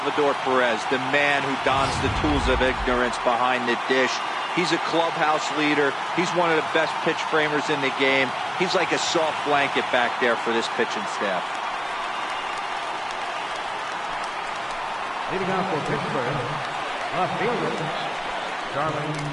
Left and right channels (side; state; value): both; identical; correlation 1.00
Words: Perez, the man who dons the tools of ignorance behind the dish. He's a clubhouse leader. He's one of the best pitch framers in the game. He's like a soft blanket back there for this pitching staff. Leading off for Pittsburgh, left fielder, Charlie